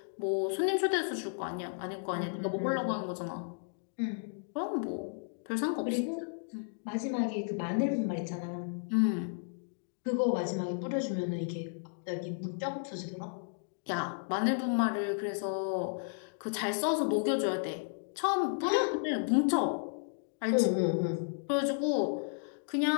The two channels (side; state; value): right; silent; digital silence